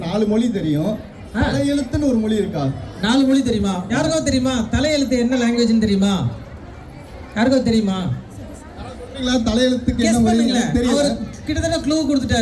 4 மொழி தெரியும். தலையெழுத்துன்னு ஒரு மொழி இருக்கா? 4 மொழி தெரியுமா? யாருக்கோ தெரியுமா? தலையெழுத்து என்ன லாங்குவேஜ்னு தெரியுமா? யாருக்கோ தெரியுமா? தலையெழுத்துக்கு என்ன மொழி தெரியல. கிட்டத்தட்ட க்ளூ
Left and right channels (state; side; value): identical; both; correlation 1.00